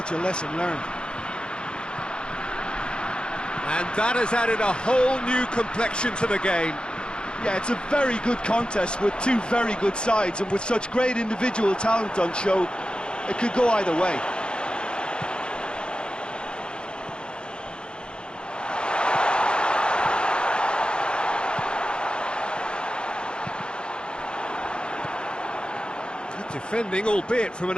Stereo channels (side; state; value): right; late; 0.051 ms